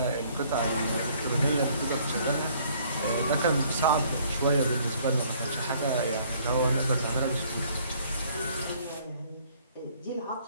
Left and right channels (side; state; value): both; inverted; correlation -0.60